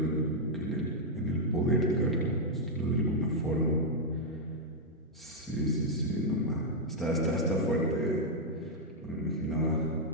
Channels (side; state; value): both; normal; correlation -0.03